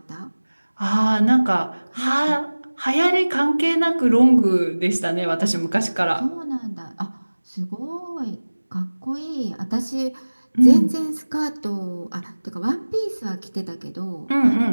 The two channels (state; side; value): inverted; both; correlation -1.00